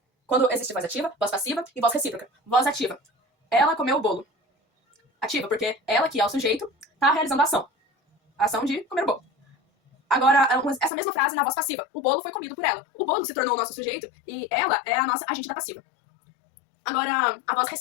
quando existe voz ativa, voz passiva e voz recíproca. Voz ativa. Ela comeu o bolo. Ativa, porque ela, que é o sujeito, tá realizando a ação. A ação de comer o bolo. Agora, essa mesma frase na voz passiva. O bolo foi comido por ela. O bolo se tornou o nosso sujeito e ela é a nossa agente da passiva. Agora, a voz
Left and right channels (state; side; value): drops out; right; at 10.9 s